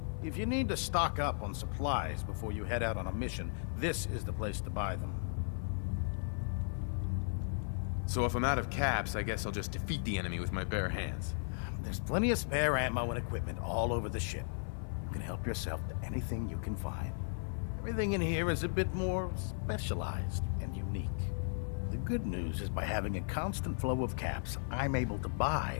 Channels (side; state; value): right; silent; 54 dB below the other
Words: If you need to stock up on supplies before you head out on a mission, this is the place to buy them. So if I'm out of caps, I guess I'll just defeat the enemy with my bare hands. There's plenty of spare ammo and equipment all over the ship. You can help yourself to anything you can find. Everything in here is a bit more specialized and unique. The good news is by having a constant flow of caps, I'm able to buy